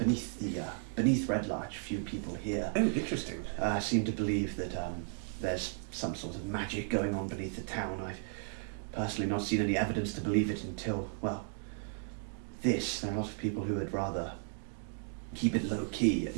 Red Larch. Few people here Oh, interesting. seem to believe that there's some sort of magic going on beneath the town. I've personally not seen any evidence to believe it until, well, this. There are a lot of people who would rather keep it low key, and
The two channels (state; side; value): silent; left; 55 dB below the other